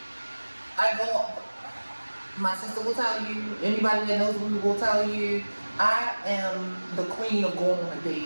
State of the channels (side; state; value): both; inverted; correlation -1.00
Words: I go, my sister will tell you, anybody that knows me will tell you, I am the queen of going on a